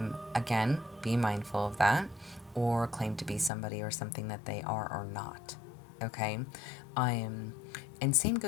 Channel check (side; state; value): right; drops out; at 3.5 s